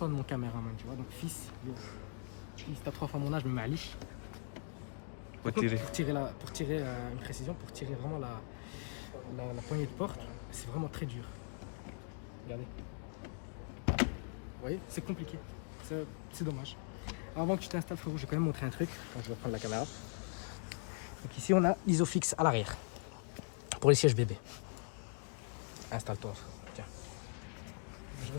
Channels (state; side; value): silent; right; 51 dB below the other